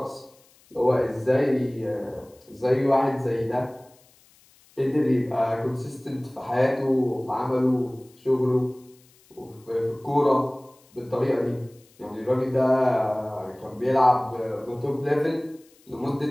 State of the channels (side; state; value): left; noise; hiss, 30 dB below the sound